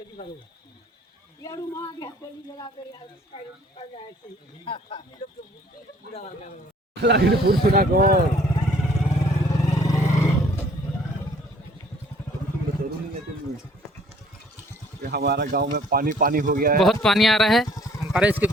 दिखाओ यार मां के हाथ में लगा कर यार कर जाए थे लोग तो बुरा लगा लगे पुरुष ना को हमारा गांव में पानी पानी हो गया है, बहुत पानी आ रहा है बारिश की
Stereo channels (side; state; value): both; normal; correlation 0.57